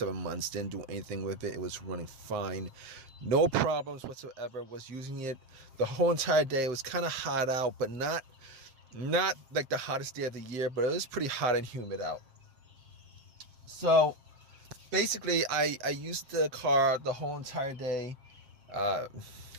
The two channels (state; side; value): late; left; 7.5 ms